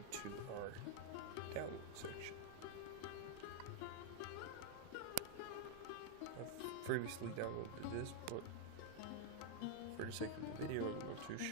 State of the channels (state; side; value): different; both; correlation 0.00